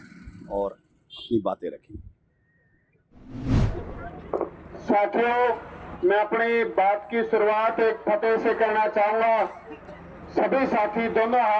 और अपनी बातें रखी। साथियों, मैं अपनी बात की शुरुआत एक फतेह से करना चाहूंगा। सभी साथी दोनों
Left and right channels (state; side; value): identical; both; correlation 1.00